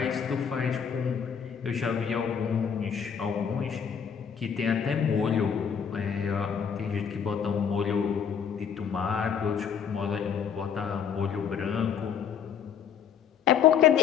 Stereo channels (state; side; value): quieter; right; 7.5 dB